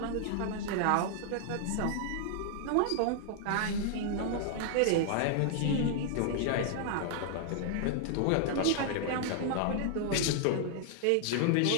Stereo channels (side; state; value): both; different; correlation 0.00